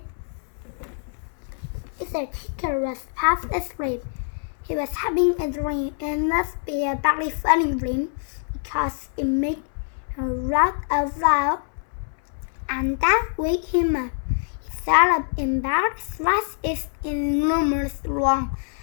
Mr. Tickle was half asleep. He was having a dream. It must be a very funny dream because it made him laugh out loud, and that waked him up. He sat up in bed, stretched his enormous long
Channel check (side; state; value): right; silent; 62 dB below the other